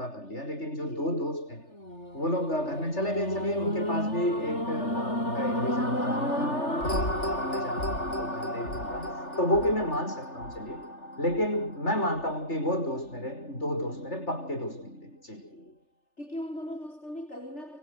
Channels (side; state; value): right; late; 3.4 ms